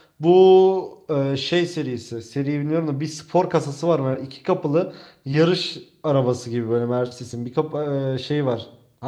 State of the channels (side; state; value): both; identical; correlation 1.00